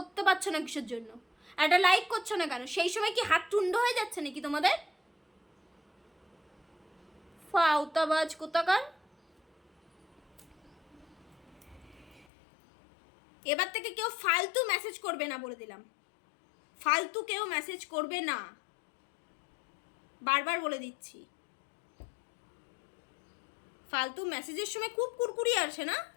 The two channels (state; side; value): drops out; right; at 12.2 s